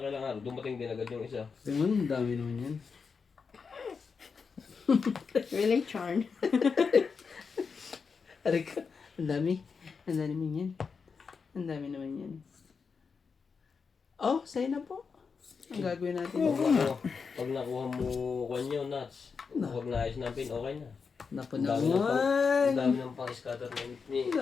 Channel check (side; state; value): right; quieter; 5.4 dB